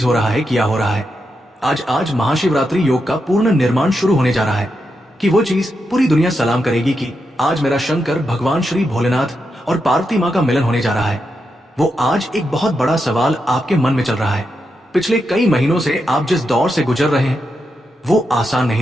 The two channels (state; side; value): normal; both; correlation 0.85